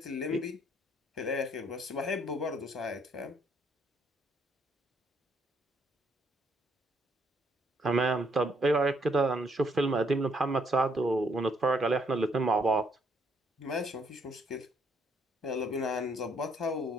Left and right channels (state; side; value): normal; both; correlation 0.70